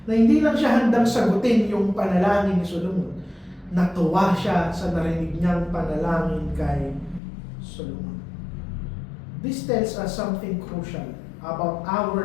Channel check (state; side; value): drops out; right; at 7.2 s